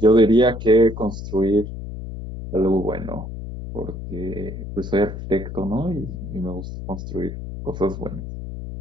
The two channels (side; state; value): left; noise; hum, 9 dB below the sound